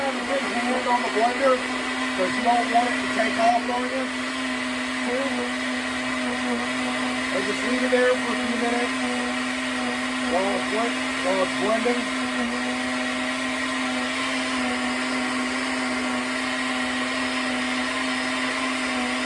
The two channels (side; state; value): both; identical; correlation 1.00